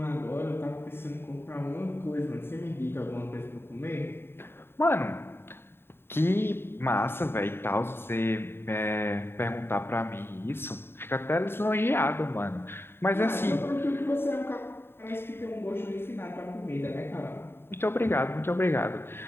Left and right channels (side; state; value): right; late; 0.11 ms